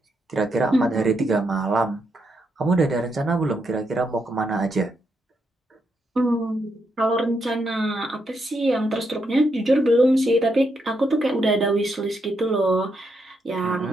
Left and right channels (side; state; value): both; normal; correlation 0.80